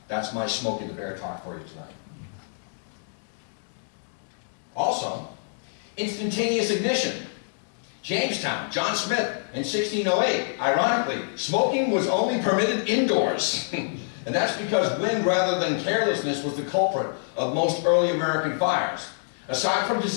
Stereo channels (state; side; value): silent; right; digital silence